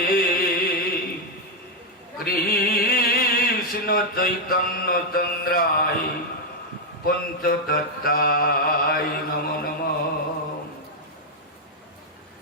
কৃষ্ণ চৈতন্য চন্দ্রায় পঞ্চতত্ত্বায় নমো নমঃ।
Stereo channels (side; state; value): both; normal; correlation 0.01